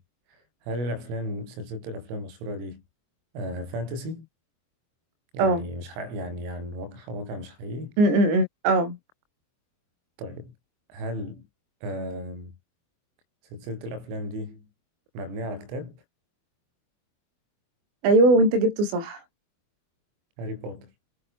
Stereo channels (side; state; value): left; late; 24 ms